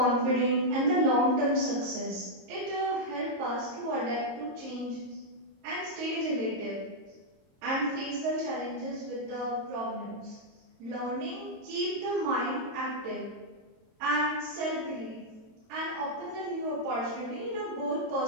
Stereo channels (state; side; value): late; left; 22 ms